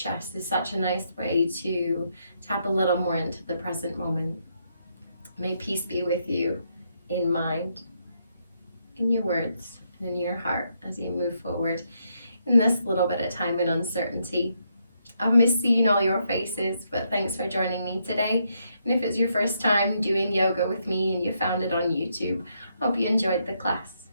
is such a nice way to tap a little more into the present moment. May peace be with you in mind, in your words, and in your heart as you move forward in this little bit of time and uncertainty. I've missed seeing all your faces, but thanks for joining me today. And if it's your first time doing yoga with me and you found it on YouTube, hope you enjoyed the class.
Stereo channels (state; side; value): inverted; both; correlation -0.77